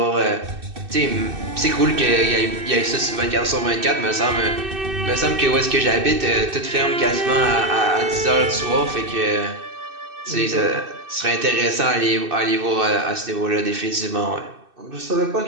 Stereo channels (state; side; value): late; left; 2.6 ms